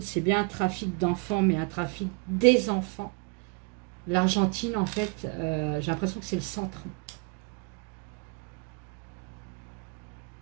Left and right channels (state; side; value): quieter; left; 33.6 dB